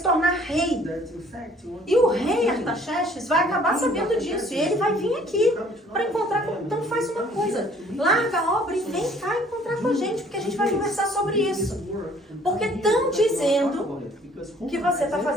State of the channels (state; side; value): normal; both; correlation 0.57